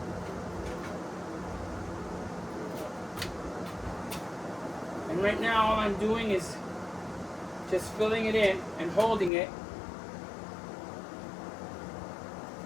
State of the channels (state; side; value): drops out; right; at 9.3 s